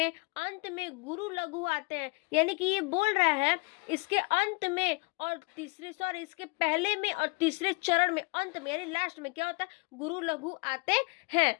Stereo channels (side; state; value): right; quieter; 29.5 dB